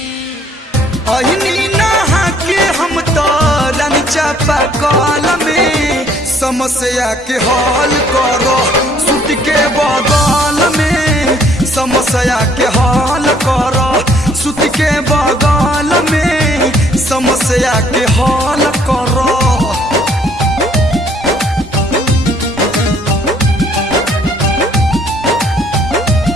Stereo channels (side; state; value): both; normal; correlation 0.62